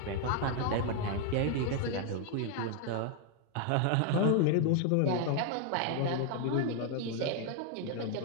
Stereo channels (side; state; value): both; different; correlation 0.00